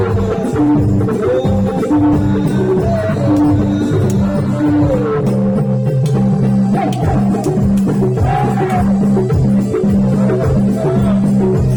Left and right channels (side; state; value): both; identical; correlation 1.00